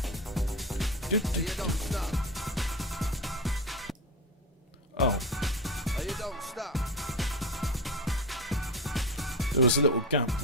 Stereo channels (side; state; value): both; normal; correlation 0.23